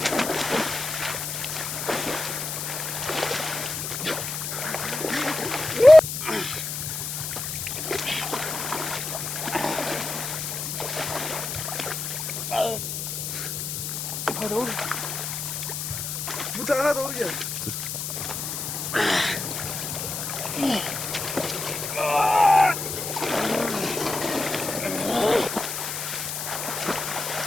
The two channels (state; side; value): noise; left; hiss, 4 dB below the sound